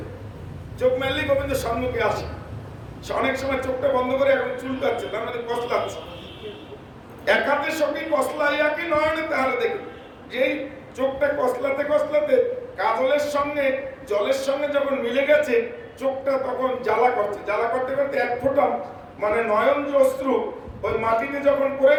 চোখ মেললি গোবিন্দ সম্মুখে আসে। অনেক সময় চোখটা বন্ধ করে এখন চুলকাচ্ছে, তার মানে কসলাচ্ছে। এক হাতে সখী কসলাই আঁকি, নয়নে তাহারে দেখি। যেই চোখটা কসলাতে কসলাতে কাজলের সঙ্গে জলের সঙ্গে যখন মিলে গেছে, চোখটা তখন জ্বালা করছে। জ্বালা করতে করতে এক ফোঁটা মানে নয়ন যে অশ্রু ওই মাটিতে যখন পড়ে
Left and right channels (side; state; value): both; identical; correlation 1.00